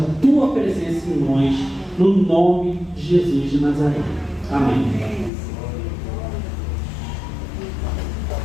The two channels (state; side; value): drops out; right; at 5.3 s